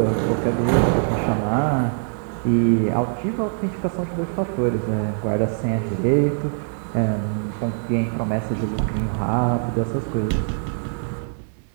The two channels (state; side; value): silent; left; digital silence